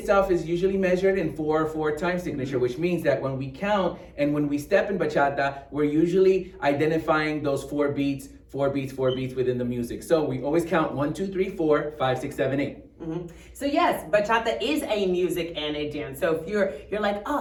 is usually measured in 4/4 time signature, which means that when we count and when we step in bachata, we're usually identifying those four beats within the music. So we always count 1, 2, 3, 4, 5, 6, 7, 8. Mm-hmm. So yes, bachata is a music and a dance. So if you're like,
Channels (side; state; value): both; identical; correlation 1.00